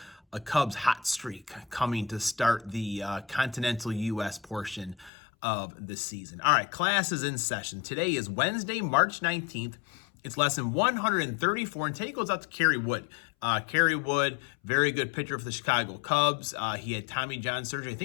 a Cubs hot streak coming to start the continental U.S. portion of the season. All right, class is in session. Today is Wednesday, March 19th. It's lesson 134, and today goes out to Kerry Wood. Kerry Wood, very good pitcher for the Chicago Cubs. He had Tommy John surgery, I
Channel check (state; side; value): drops out; right; at 5.1 s